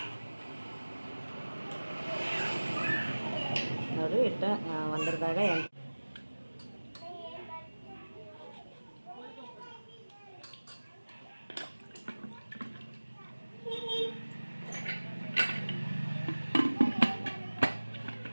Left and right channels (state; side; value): inverted; both; correlation -1.00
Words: ನೋಡಿರಿ ಇಟ್ಟು ಒಂದರದಾಗ